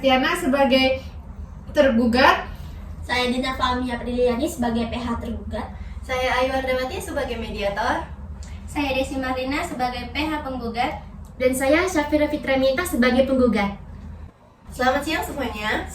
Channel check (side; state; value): both; identical; correlation 1.00